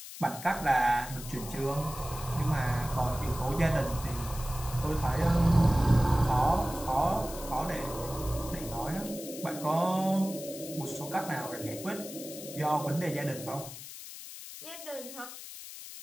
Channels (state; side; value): noise; left; hiss, 12 dB below the sound